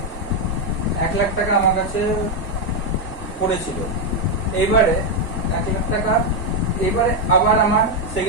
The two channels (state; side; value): normal; both; correlation 0.02